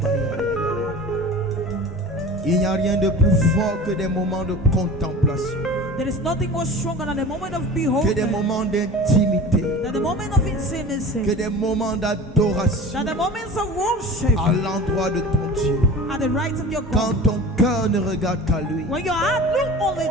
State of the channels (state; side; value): normal; both; correlation 0.36